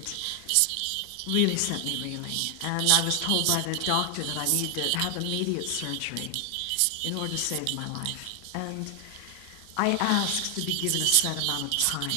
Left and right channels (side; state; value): both; different; correlation 0.00